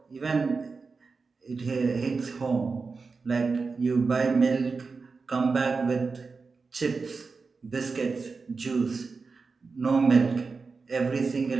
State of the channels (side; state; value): left; quieter; 4.5 dB